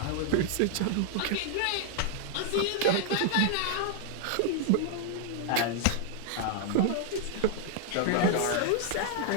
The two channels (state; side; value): different; both; correlation 0.00